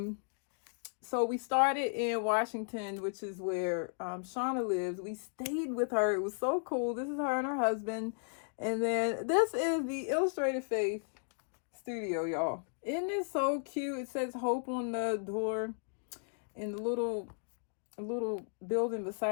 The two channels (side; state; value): right; silent; digital silence